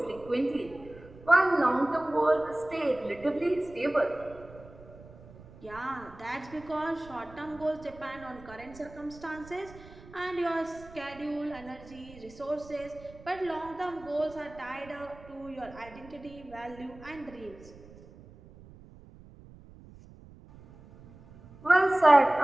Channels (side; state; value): right; noise; rumble, 20 dB below the sound